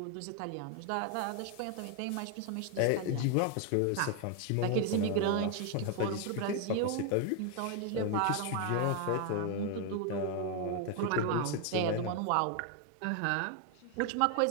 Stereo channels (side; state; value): both; different; correlation 0.01